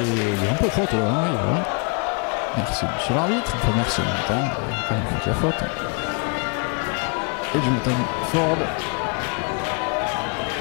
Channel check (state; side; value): quieter; right; 37.3 dB